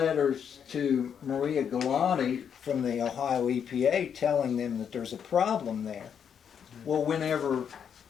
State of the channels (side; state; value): right; quieter; 7.8 dB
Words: to Maria Galante from the Ohio EPA telling them that there's a problem there. Well, whenever